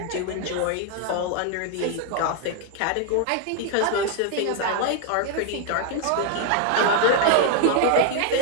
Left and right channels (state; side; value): different; both; correlation 0.00